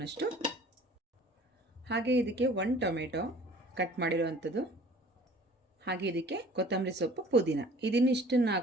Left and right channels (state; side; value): normal; both; correlation 0.49